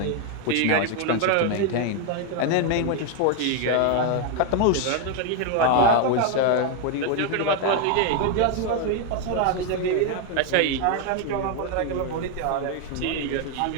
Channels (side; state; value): both; different; correlation 0.01